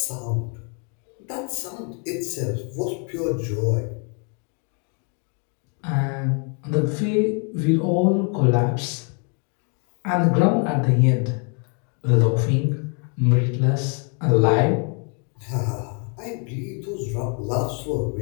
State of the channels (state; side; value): quieter; right; 38.8 dB